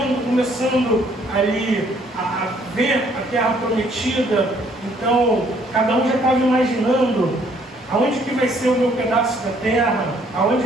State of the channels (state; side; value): normal; both; correlation 0.64